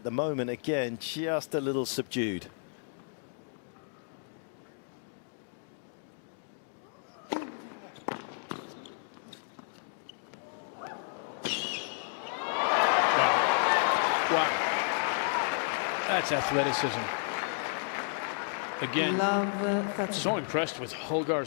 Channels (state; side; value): silent; right; digital silence